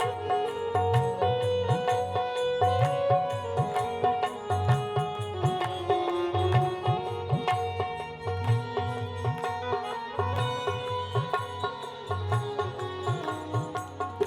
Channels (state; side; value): identical; both; correlation 1.00